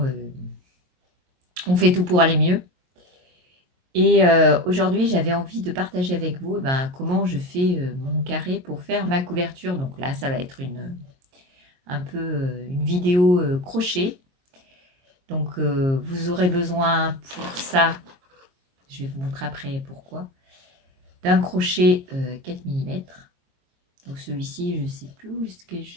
on fait tout pour aller mieux. Et aujourd'hui, j'avais envie de partager avec vous comment je fais mon carré pour faire ma couverture. Donc là, ça va être un peu une vidéo crochet. Donc vous aurez besoin pour ça, je vais vous montrer après pourquoi, d'un crochet 4 mm. Donc celui-ci, je ne sais plus où est-ce que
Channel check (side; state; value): left; late; 22 ms